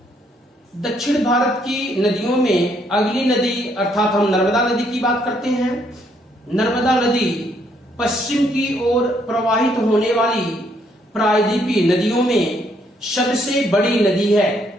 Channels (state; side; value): normal; both; correlation 0.70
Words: दक्षिण भारत की नदियों में अगली नदी अर्थात हम नर्मदा नदी की बात करते हैं। नर्मदा नदी पश्चिम की ओर प्रवाहित होने वाली प्रायद्वीपीय नदियों में सबसे बड़ी नदी है।